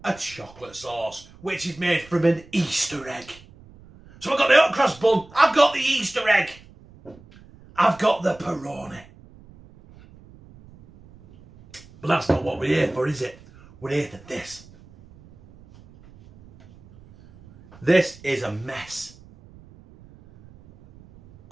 a chocolate sauce, which is made from an Easter egg. So I've got the hot cross bun, I've got the Easter egg, I've got the pepperoni. But that's not what we're here for, is it? We're here for this. This is a mess.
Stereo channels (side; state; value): right; noise; rumble, 23 dB below the sound